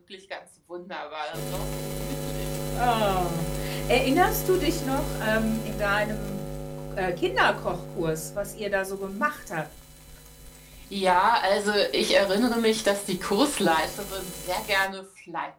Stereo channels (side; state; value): both; identical; correlation 1.00